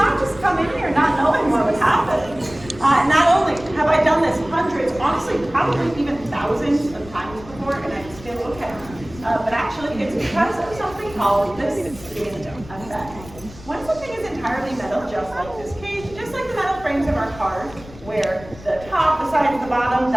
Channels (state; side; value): noise; left; rumble, 18 dB below the sound